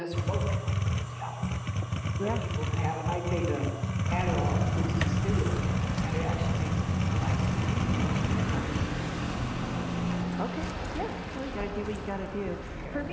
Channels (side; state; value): both; identical; correlation 1.00